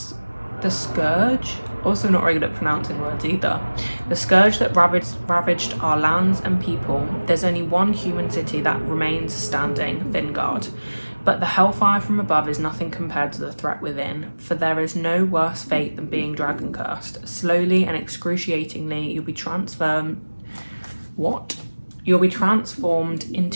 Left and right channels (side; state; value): both; inverted; correlation -1.00